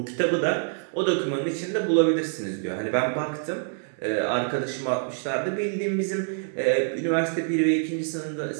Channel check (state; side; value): silent; left; 61 dB below the other